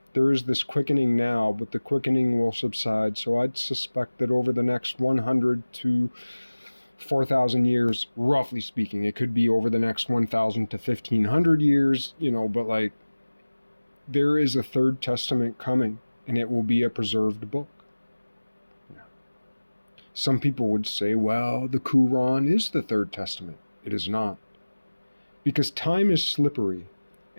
there is this quickening now, but the quickening will subside. So I'd suspect that over the next 100 to 4,000 years, roughly speaking, it could be over the next 1,000 to 1,500 years, but like, there is a third testament coming, and it will be a preserved book. Yeah. Some people would say, well, the Quran is the third testament. It is not. Because time is slippery,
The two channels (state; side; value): inverted; both; correlation -1.00